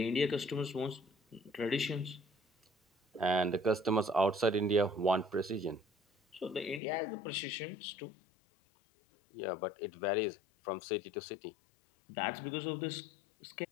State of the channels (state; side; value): drops out; right; at 6.8 s